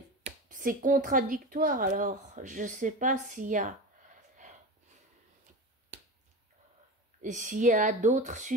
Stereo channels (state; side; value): normal; both; correlation 0.27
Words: contradictoire, alors je sais pas s'il y a d'autres